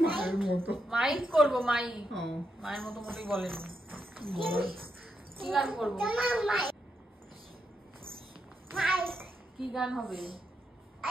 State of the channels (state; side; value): normal; both; correlation 0.82